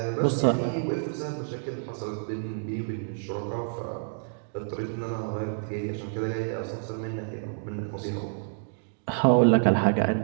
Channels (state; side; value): silent; left; digital silence